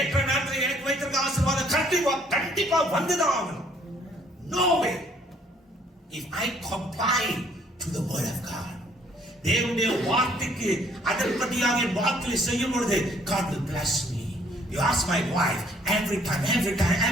நேரத்தில் எனக்கு வைத்திருக்க ஆசீர்வாதம் கண்டிப்பா வந்துதான் ஆகணும். No way. If I comply to the word of God, தேவனுடைய வார்த்தைக்கு அதன்படியாக என் வாழ்க்கையை செய்யும் பொழுது God will bless me. You ask my wife, every time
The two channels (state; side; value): normal; both; correlation 0.62